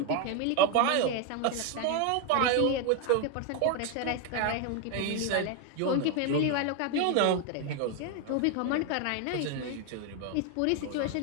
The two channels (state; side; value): different; both; correlation 0.01